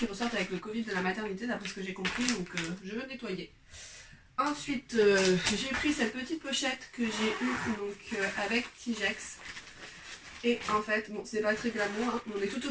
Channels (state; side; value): identical; both; correlation 1.00